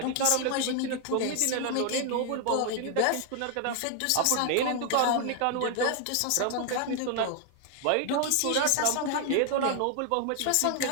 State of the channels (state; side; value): different; both; correlation 0.00